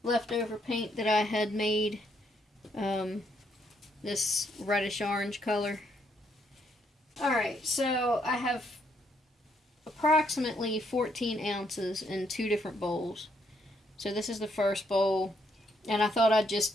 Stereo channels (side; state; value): both; normal; correlation 0.73